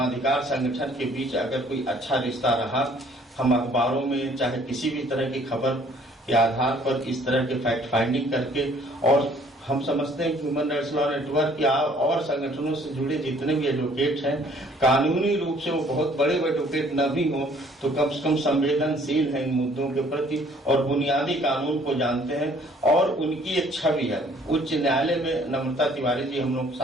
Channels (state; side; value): normal; both; correlation 0.59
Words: संगठन के बीच अगर कोई अच्छा रिश्ता रहा, हम अखबारों में चाहे किसी भी तरह की खबर के आधार पर इस तरह के फैक्ट फाइंडिंग करके, और हम समझते हैं कि ह्यूमन राइट्स लॉ नेटवर्क या और संगठनों से जुड़े जितने भी एडवोकेट हैं, कानूनी रूप से वो बहुत बड़े एडवोकेट न भी हों तो कम से कम संवेदनशील हैं इन मुद्दों के प्रति और बुनियादी कानून को जानते हैं, और उनकी एक छवि है। उच्च न्यायालय में नम्रता तिवारी जी हम लोग के